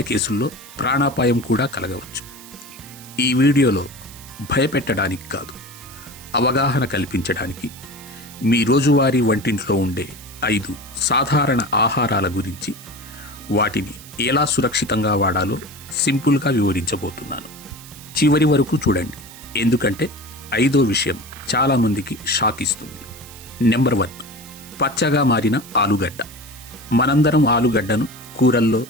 కేసుల్లో ప్రాణాపాయం కూడా కలగవచ్చు. ఈ వీడియోలో భయపెట్టడానికి కాదు, అవగాహన కల్పించడానికి మీ రోజువారీ వంటింట్లో ఉండే 5 సాధారణ ఆహారాల గురించి, వాటిని ఎలా సురక్షితంగా వాడాలో సింపుల్గా వివరించబోతున్నాను. చివరి వరకు చూడండి, ఎందుకంటే 5వ విషయం చాలామందికి షాక్ ఇస్తుంది. నెంబర్ 1, పచ్చగా మారిన ఆలుగడ్డ. మనందరం ఆలుగడ్డను కూరల్లో,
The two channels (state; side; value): noise; right; hiss, 18 dB below the sound